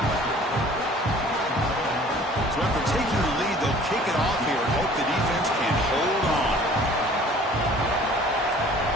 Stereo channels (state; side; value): normal; both; correlation 0.50